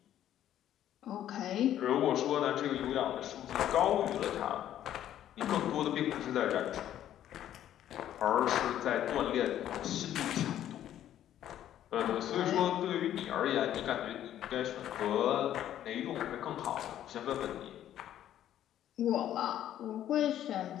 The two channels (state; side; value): quieter; right; 11.5 dB